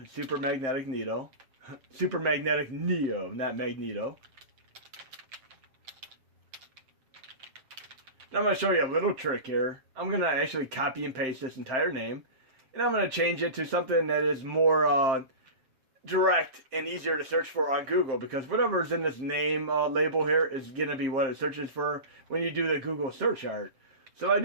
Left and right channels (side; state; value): left; late; 7.6 ms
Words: Super Magnetic Neo. Super Magnetic Neo, not Magneto. Now I'm going to show you a little trick here. I'm going to actually copy and paste this entire name. And I'm going to change it to something that is more direct and easier to search for on Google. Because whatever is in this name label here is going to be what it searches for when you do the Google search art. So I